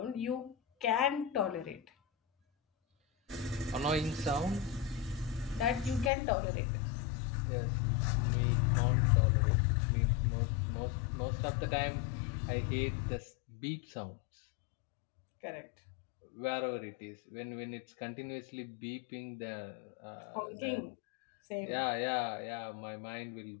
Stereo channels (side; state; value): right; drops out; at 6.1 s